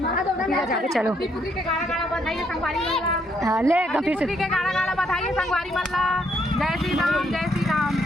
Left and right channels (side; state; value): both; normal; correlation 0.72